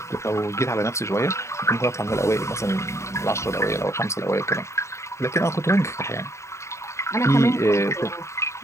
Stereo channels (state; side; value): late; right; 0.14 ms